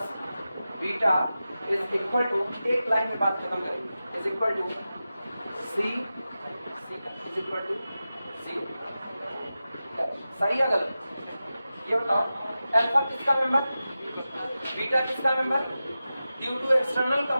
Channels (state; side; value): inverted; both; correlation -0.93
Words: beta is equal to, एक line में बात खत्म करेंगे, is equal to c is equal to 0। सही है गलत, ये बताओ, अल्फा किसका मेंबर, बीटा किसका member, due to external